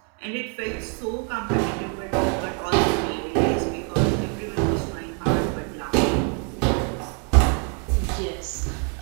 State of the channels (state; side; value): quieter; left; 37.9 dB